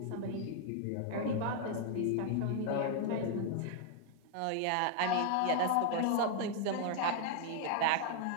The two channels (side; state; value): both; different; correlation 0.00